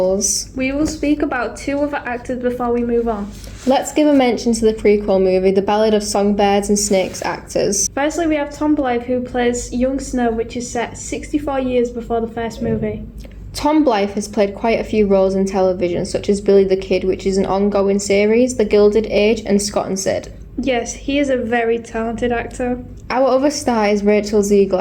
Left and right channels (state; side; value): identical; both; correlation 1.00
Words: We will speak about two other actors before we move on. Let's give a mention to the prequel movie, The Ballad of Songbirds and Snakes actors. Firstly, we have Tom Blythe, who plays young Snow, which is set 64 years before the first movie. Tom Blythe has played quite a few roles in television, such as Billy the Kid, which is an ongoing series, The Gilded Age, and Scott and Sid. Yes, he is a very talented actor. Our other star is Rachel